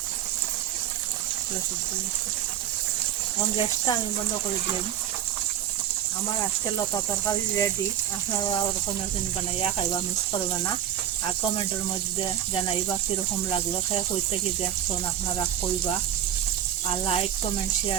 পুরা সিদ্ধ হয়ে গেছে। এখন গ্যাসটা আমি বন্ধ করে দিলাম। আমার আজকে লতা তরকারি রেডি। আপনারা ওরকম বানাইয়া খাইবা, মিস করবে না। আর কমেন্টের মধ্যে জানাইবা কীরকম লাগলো, খেয়ে কই থেকে দেখছেন আপনারা কইবা। আর লাইক কমেন্ট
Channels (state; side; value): quieter; left; 10.8 dB